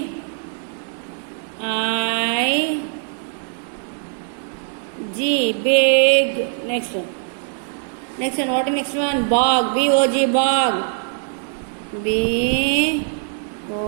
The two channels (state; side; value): silent; left; digital silence